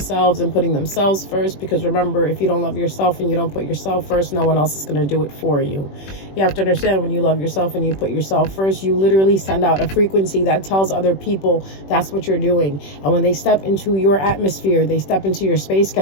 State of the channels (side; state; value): right; late; 21 ms